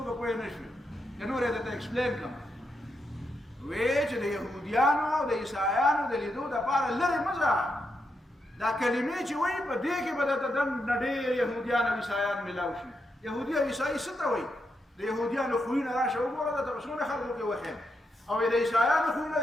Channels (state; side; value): normal; both; correlation 0.83